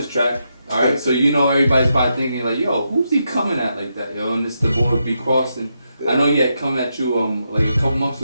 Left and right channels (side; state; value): both; inverted; correlation -0.83